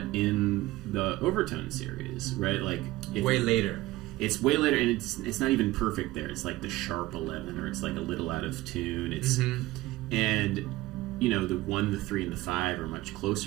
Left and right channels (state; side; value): quieter; left; 17.8 dB